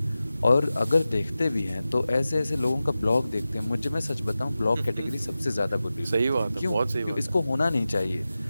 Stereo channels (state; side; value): inverted; both; correlation -0.95